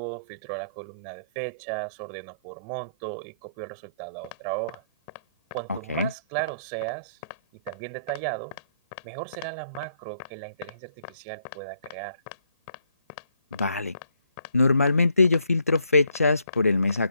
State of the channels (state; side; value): inverted; both; correlation -0.70